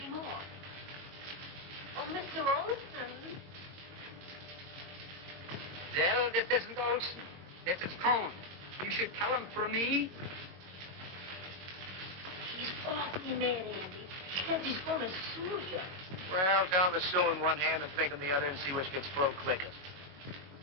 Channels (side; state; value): left; late; 22 ms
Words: more. Oh, Mr. Olson. Well, this isn't Olson. This is Cohn. You should tell him for me. He's awfully mad, Andy. He says he's going to sue you. Well, tell him to sue in one hand and think in the other and see which gets full quickest.